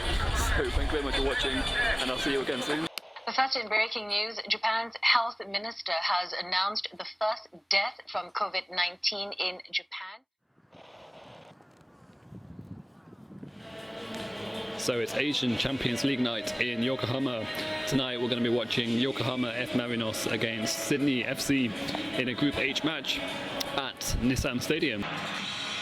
thank you very much for watching, and I'll see you again soon. First, in breaking news, Japan's health minister has announced the first death from COVID-19 in Japan. So it's Asian Champions League night in Yokohama. Tonight we're going to be watching Yokohama F Marinos against Sydney FC in a Group H match at Nissan Stadium.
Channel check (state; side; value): identical; both; correlation 1.00